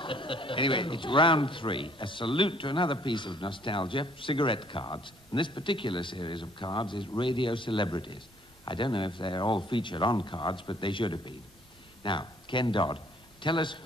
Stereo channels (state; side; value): normal; both; correlation 0.61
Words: Anyway, it's round 3. A salute to another piece of nostalgia, cigarette cards. And this particular series of cards is radio celebrities. I don't know if they're all featured on cards, but they should have been. Now, Ken Dodd, tell us